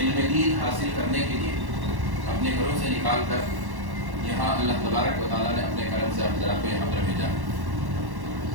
دین حاصل کرنے کے لیے اپنے گھروں سے نکال کر یہاں اللہ تبارک و تعالیٰ نے اپنے کرم سے آپ حضرات کو یہاں پر بھیجا۔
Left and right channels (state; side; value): late; left; 1.1 ms